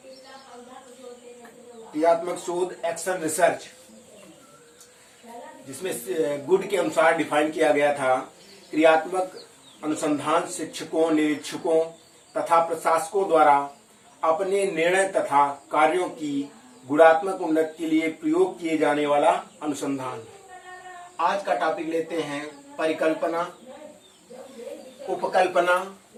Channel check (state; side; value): identical; both; correlation 1.00